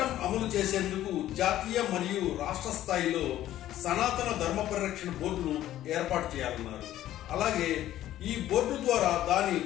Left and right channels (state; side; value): quieter; right; 13.2 dB